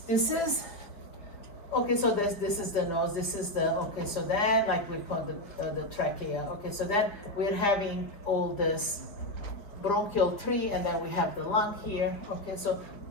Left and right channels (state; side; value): late; right; 4.9 ms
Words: this is, so this is the nose, this is the, so then like we call the trachea. Okay, so then we're having all this bronchial tree and then we have the lung here. Okay, so,